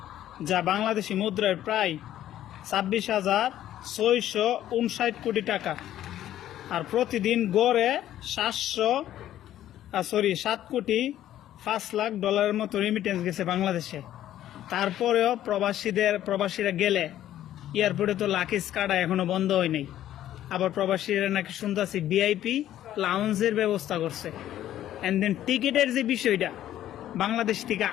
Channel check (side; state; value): right; quieter; 12.3 dB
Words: যা বাংলাদেশি মুদ্রায় প্রায় 26,659 কোটি টাকা। আর প্রতিদিন গড়ে 7,05,00,000 ডলারের মতো রেমিটেন্স গেছে বাংলাদেশে। তারপরেও প্রবাসীরা গেলে এয়ারপোর্টে তো লাকিস কাটা এখনো বন্ধ হয় নাই। আবার প্রবাসীরা নাকি শুনতেছি ভিআইপি লাউঞ্জের ব্যবস্থা করছে। অ্যান্ড দেন টিকিটের যে বিষয়টা, বাংলাদেশ থেকে